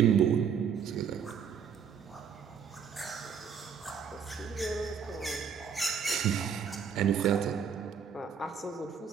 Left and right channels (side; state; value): left; quieter; 7.1 dB